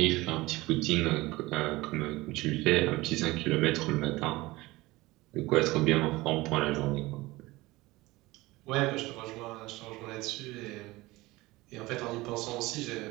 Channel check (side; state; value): left; quieter; 20.2 dB